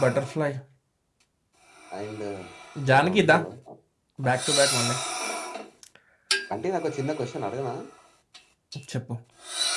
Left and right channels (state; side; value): identical; both; correlation 1.00